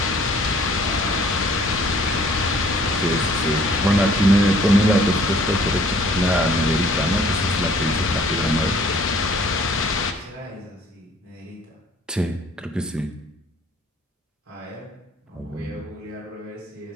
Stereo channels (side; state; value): both; normal; correlation 0.57